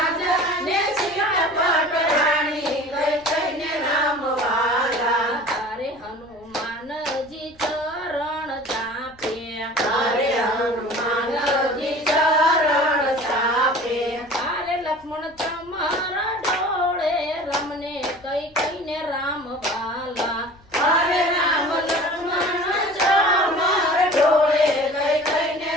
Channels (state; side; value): noise; left; rumble, 28 dB below the sound